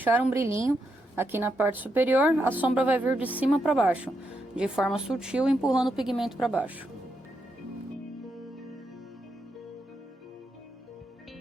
um brilhinho aqui na parte superior, a sombra vai vir de cima para baixo, de forma sutil, empurrando o pigmento para baixo.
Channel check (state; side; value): normal; both; correlation 0.82